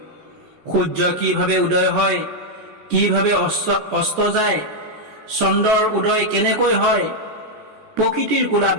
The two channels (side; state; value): left; late; 14 ms